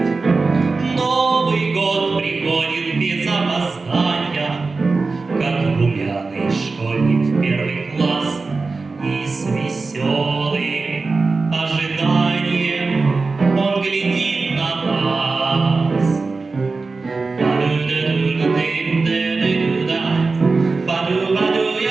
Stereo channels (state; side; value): quieter; left; 4.0 dB